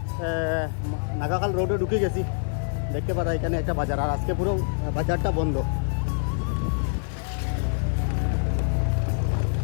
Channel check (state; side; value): silent; right; 61 dB below the other